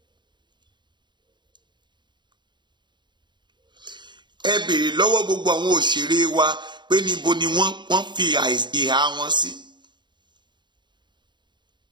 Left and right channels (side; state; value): left; late; 0.22 ms